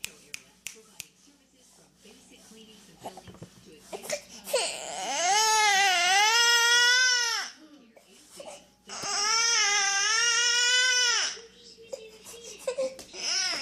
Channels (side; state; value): both; identical; correlation 1.00